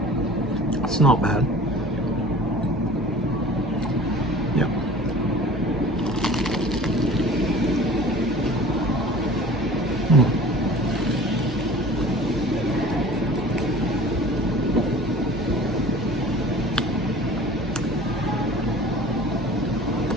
It's not bad. Yeah.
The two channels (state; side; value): normal; both; correlation 0.43